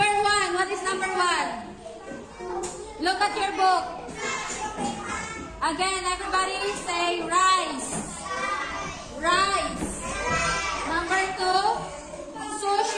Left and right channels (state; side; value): identical; both; correlation 1.00